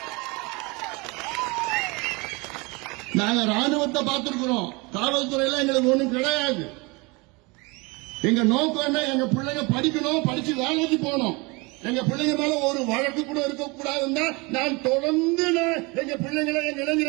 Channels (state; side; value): quieter; left; 26.8 dB